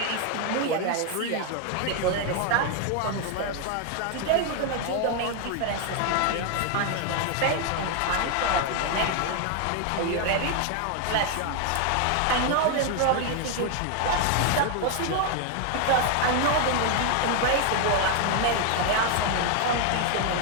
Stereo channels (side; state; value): both; different; correlation 0.00